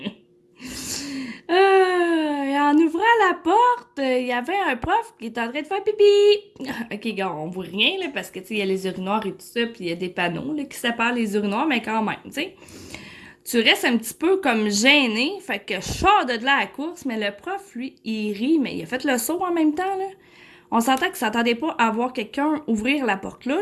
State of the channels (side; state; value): both; identical; correlation 1.00